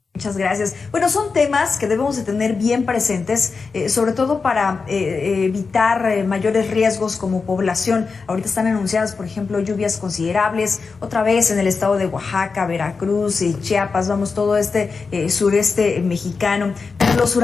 Muchas gracias. Bueno, son temas que debemos de tener bien presentes, sobre todo para evitar mayores riesgos como población. Ahorita están anunciadas, por ejemplo, lluvias considerables, otra vez en el estado de Oaxaca, Veracruz, Chiapas, vamos, todo este sureste mexicano. Los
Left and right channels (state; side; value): quieter; right; 4.7 dB